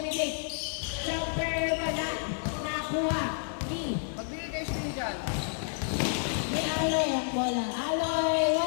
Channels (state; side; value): silent; right; 58 dB below the other